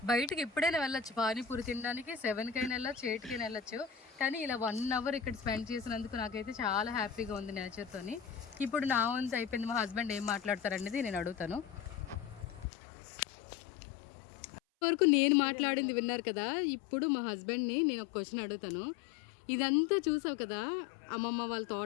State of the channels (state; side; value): drops out; right; at 12.7 s